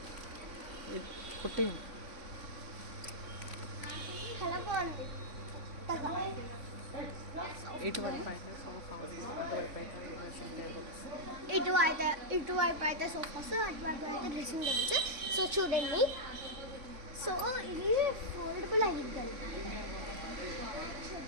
కుట్టి చాలా బాగుంది. ఇటువైపు అయితే సోఫాస్, అటువైపు అయితే డ్రెస్సింగ్ టేబుల్స్. సో చూడండి. సో ఇది ఫోల్డబుల్ అయ్యిద్దండి,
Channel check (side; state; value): left; late; 3.5 ms